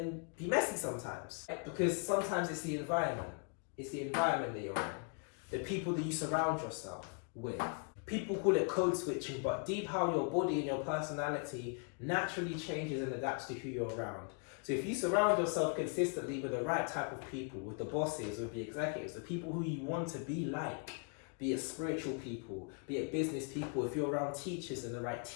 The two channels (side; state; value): right; quieter; 40.0 dB